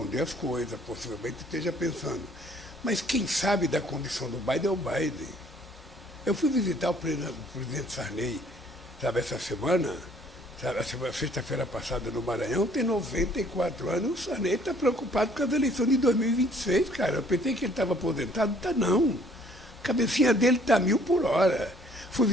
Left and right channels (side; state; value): both; normal; correlation 0.60